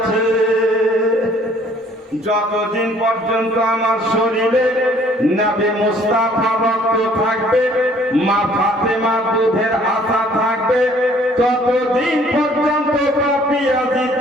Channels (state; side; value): normal; both; correlation 0.58